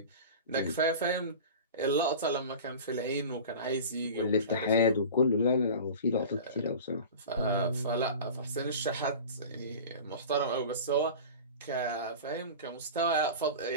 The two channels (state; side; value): inverted; both; correlation -0.35